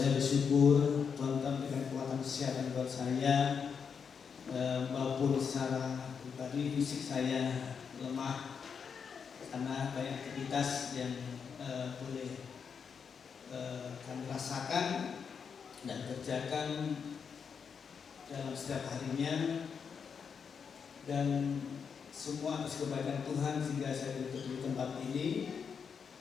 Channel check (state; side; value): quieter; right; 6.4 dB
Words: bersyukur Tuhan memberikan kekuatan kesehatan buat saya, maupun secara pribadi fisik saya lemah karena banyak aktivitas yang boleh kami rasakan dan kerjakan dalam setiap harinya, dan semua atas kebaikan Tuhan sehingga saya duduk di tempat ini.